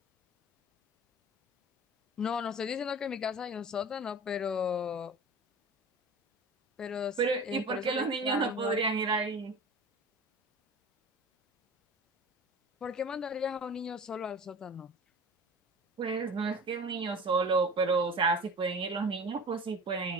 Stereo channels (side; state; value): both; normal; correlation 0.37